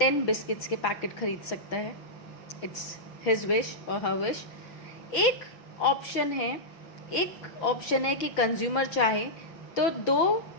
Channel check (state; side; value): late; right; 6.0 ms